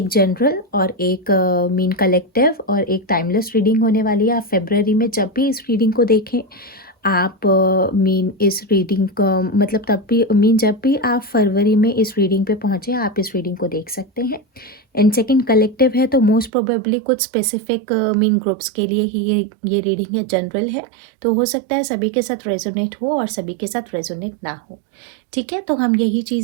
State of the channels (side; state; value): left; drops out; at 16.5 s